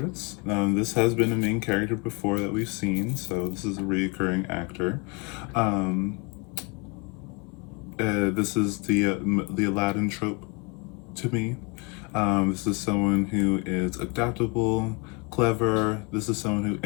This has been a main character before that we've seen, so this is a recurring actor. This is the Aladdin trope to me. This is someone who is adaptable, clever. This is someone who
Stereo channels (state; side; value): quieter; right; 31.3 dB